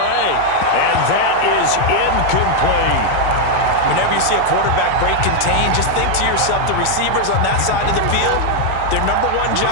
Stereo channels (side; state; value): both; different; correlation 0.00